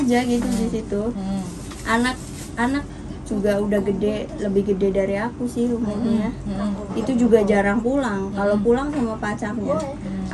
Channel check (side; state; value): both; identical; correlation 1.00